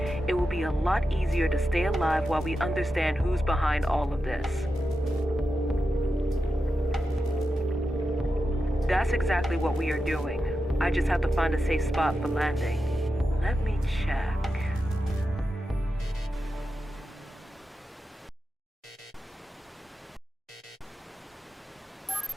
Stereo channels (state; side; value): normal; both; correlation 0.90